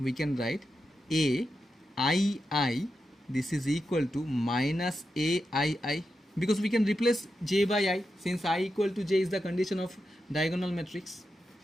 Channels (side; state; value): both; normal; correlation 0.88